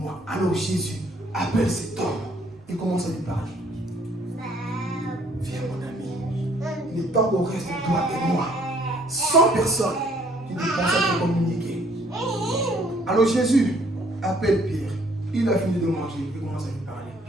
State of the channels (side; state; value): both; normal; correlation 0.62